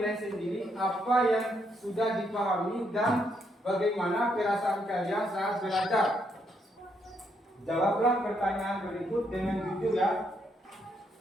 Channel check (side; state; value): both; normal; correlation 0.75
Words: sendiri apa yang sudah dipahami dan bagaimana perasaan kalian saat belajar. Jawablah pertanyaan berikut dengan jujur ya.